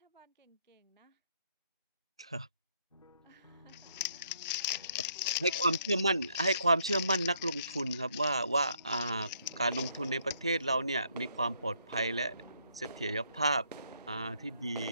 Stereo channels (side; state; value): both; inverted; correlation -0.70